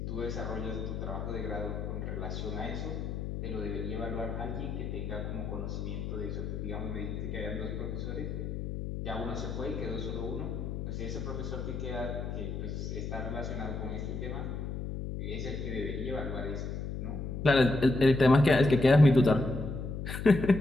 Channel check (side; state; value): left; noise; hum, 5 dB below the sound